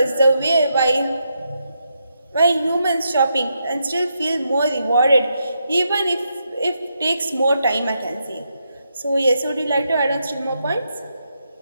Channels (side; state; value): both; inverted; correlation -0.82